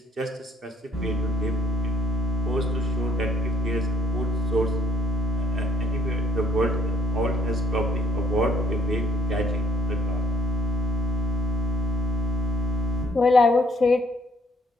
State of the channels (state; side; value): normal; both; correlation 0.64